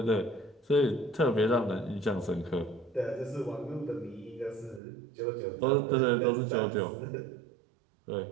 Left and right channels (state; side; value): drops out; left; at 4.8 s